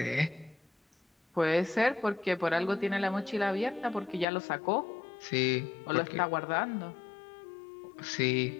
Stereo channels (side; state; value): right; drops out; at 4.2 s